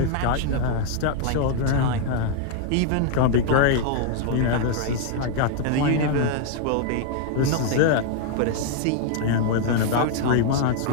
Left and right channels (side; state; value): both; different; correlation 0.00